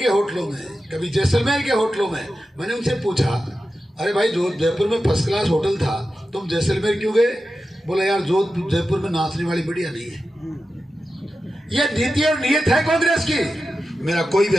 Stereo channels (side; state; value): both; normal; correlation 0.92